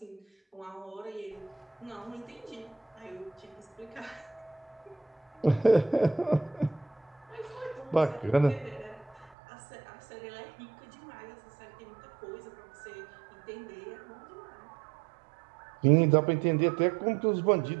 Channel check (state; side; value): drops out; left; at 9.3 s